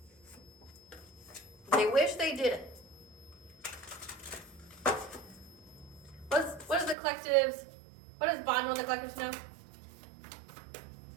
They wish they didn't. What does Bond with the collectives know?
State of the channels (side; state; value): left; drops out; at 7.0 s